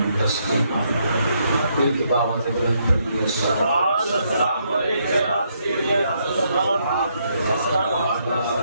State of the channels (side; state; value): both; inverted; correlation -0.75